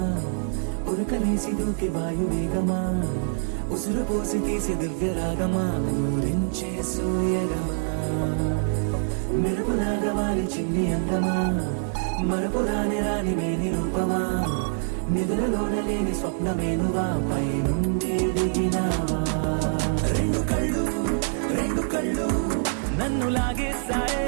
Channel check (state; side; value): silent; left; digital silence